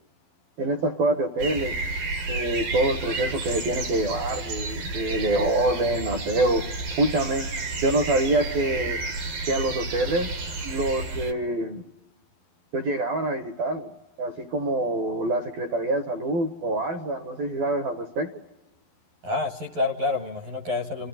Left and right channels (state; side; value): late; left; 11 ms